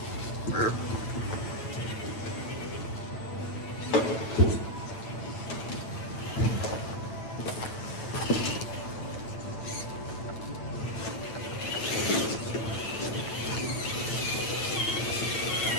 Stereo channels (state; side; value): late; right; 9.0 ms